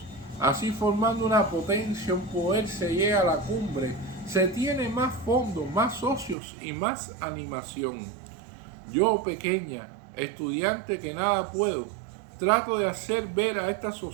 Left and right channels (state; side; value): drops out; left; at 6.4 s